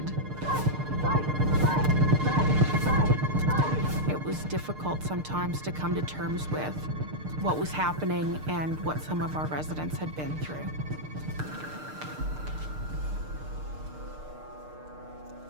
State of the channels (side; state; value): left; late; 6.6 ms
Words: It was difficult sometimes to come to terms with what was happening and what some of our residents had been through.